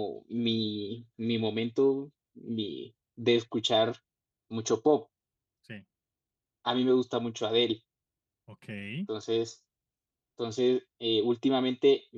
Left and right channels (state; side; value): identical; both; correlation 1.00